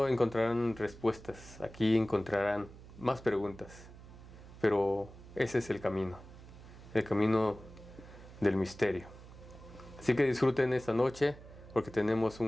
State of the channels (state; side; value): noise; right; hum, 18 dB below the sound